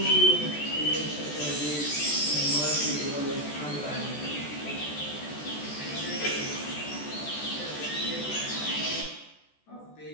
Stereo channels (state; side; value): late; right; 14 ms